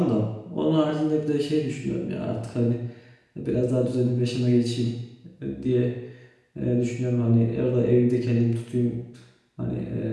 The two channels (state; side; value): identical; both; correlation 1.00